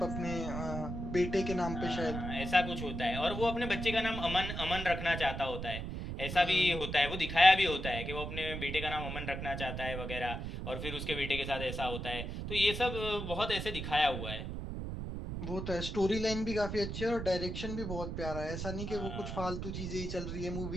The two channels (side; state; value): right; noise; rumble, 5 dB below the sound